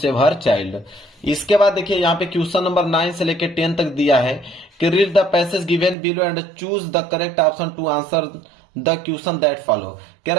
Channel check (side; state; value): left; drops out; at 6.0 s